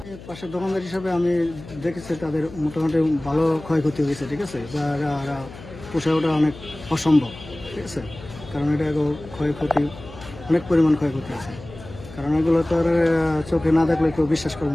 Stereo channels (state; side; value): noise; left; hum, 16 dB below the sound